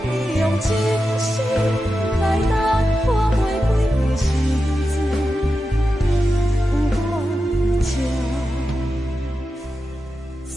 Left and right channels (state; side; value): normal; both; correlation 0.90